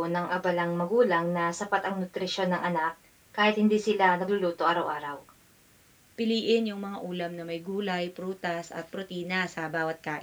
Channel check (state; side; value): identical; both; correlation 1.00